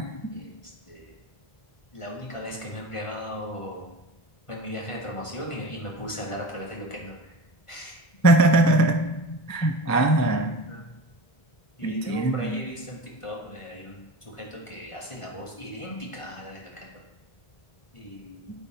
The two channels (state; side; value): late; right; 1.5 ms